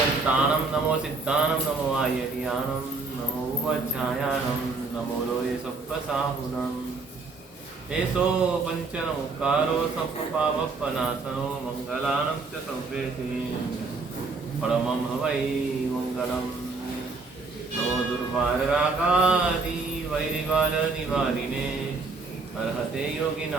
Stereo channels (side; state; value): left; quieter; 4.0 dB